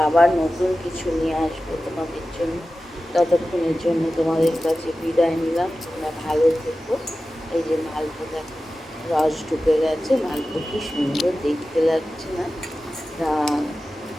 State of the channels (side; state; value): both; normal; correlation 0.94